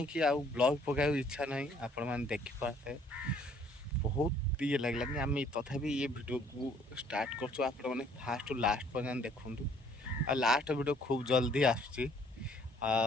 କି ଆଉ ବ୍ଲଗ୍ ପକାଇବାକୁ ଇଚ୍ଛା ନାହିଁ ଆପଣମାନେ ଦେଖିପାରୁଥିବେ बहुत ये लगलानी आम तथापि ये वीडियो को स्टार्ट करछु आपण माने फास्ट टू लास्ट पर्यंत देखंतु आ लास्ट वीडियो खूब जल्दी आसुची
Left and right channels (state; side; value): normal; both; correlation 0.61